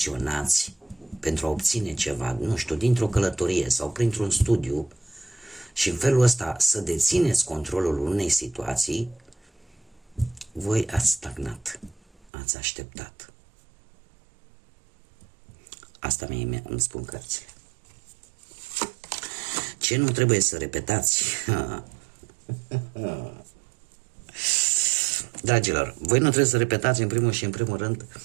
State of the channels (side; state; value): left; drops out; at 12.2 s